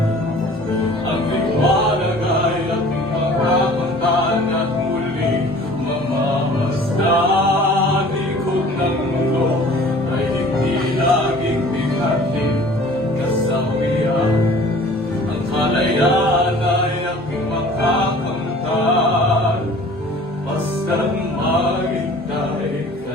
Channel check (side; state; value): both; normal; correlation 0.48